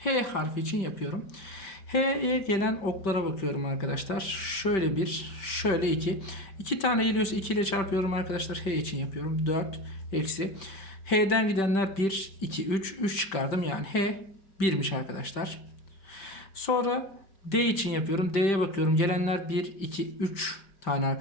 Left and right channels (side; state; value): right; late; 5.2 ms